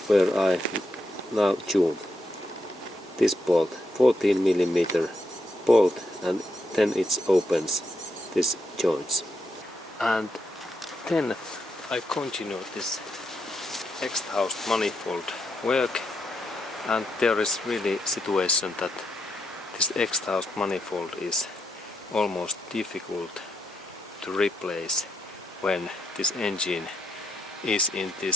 where I now tune this bolt, 14mm bolt, and then it opens this joints. And then I continue this exhaust manifold work, and there is really situation that this exhaust manifold is almost difficult to replace when this engine is in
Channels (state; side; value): normal; both; correlation 0.80